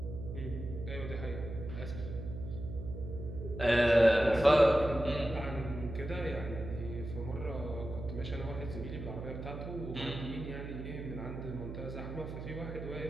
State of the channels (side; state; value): right; noise; hum, 8 dB below the sound